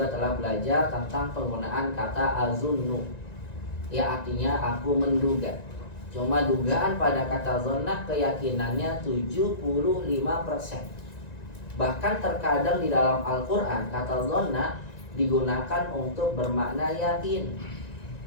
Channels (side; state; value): right; late; 1.9 ms